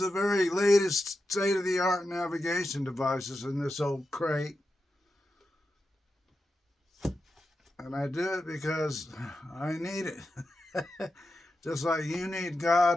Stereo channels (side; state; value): both; normal; correlation 0.89